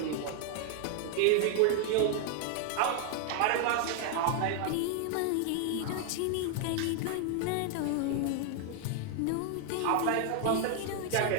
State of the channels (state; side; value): different; both; correlation 0.00